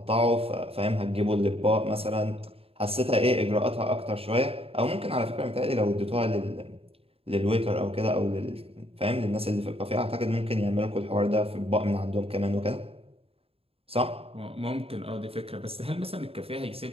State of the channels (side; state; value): left; late; 0.28 ms